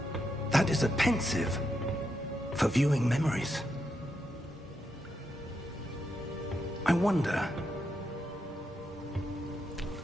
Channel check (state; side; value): normal; both; correlation 0.83